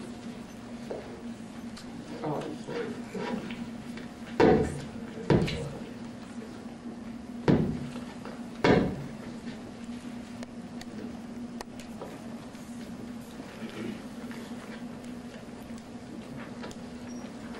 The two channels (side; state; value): both; identical; correlation 1.00